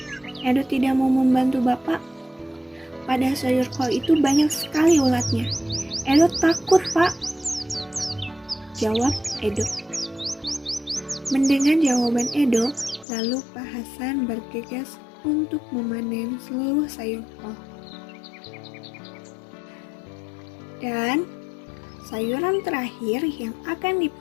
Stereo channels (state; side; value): drops out; right; at 13.1 s